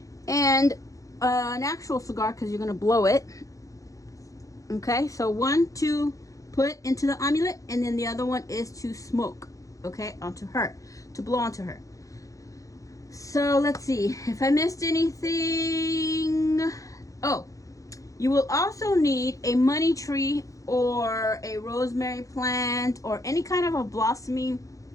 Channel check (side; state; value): right; late; 0.16 ms